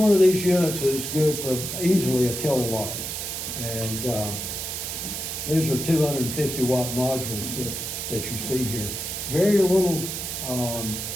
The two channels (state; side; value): noise; right; hiss, 5 dB below the sound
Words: of these units is good for easily a kilowatt. And these are 250 watt modules that you see here. Very little